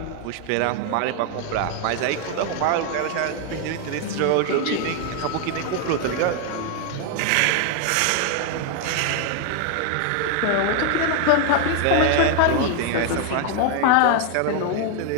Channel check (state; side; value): different; both; correlation 0.00